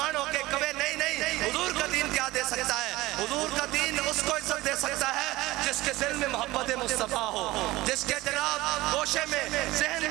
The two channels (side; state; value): left; quieter; 18.7 dB